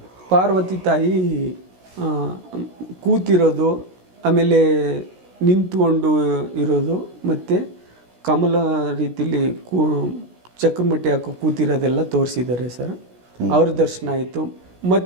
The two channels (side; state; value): left; late; 16 ms